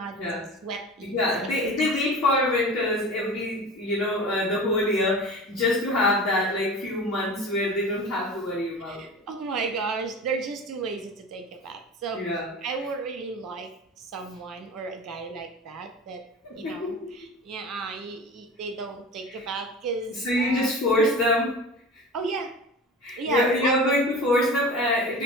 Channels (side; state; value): both; normal; correlation 0.35